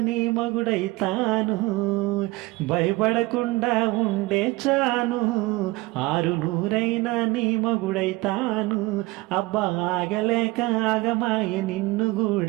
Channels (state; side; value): quieter; left; 21.6 dB